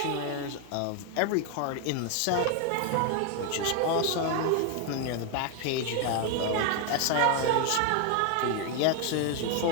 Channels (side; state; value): both; different; correlation 0.01